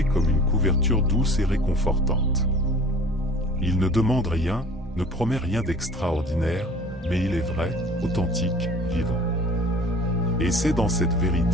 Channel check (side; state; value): both; normal; correlation 0.46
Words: comme une couverture douce et réconfortante. Il ne demande rien, ne promet rien d'extraordinaire, mais il est vrai, authentique, vivant. Et c'est dans cette